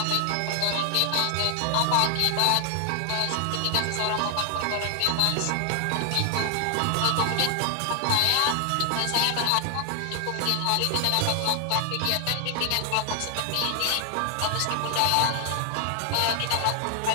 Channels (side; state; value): both; different; correlation 0.00